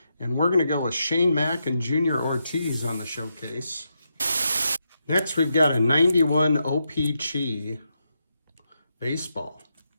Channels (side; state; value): both; inverted; correlation -0.84